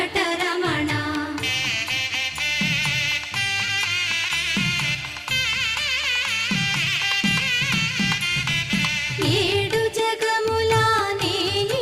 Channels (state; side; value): identical; both; correlation 1.00